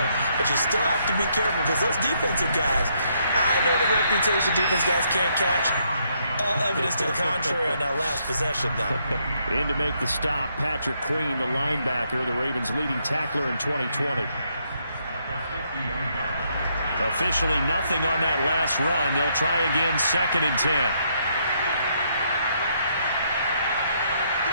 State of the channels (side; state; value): both; inverted; correlation -0.74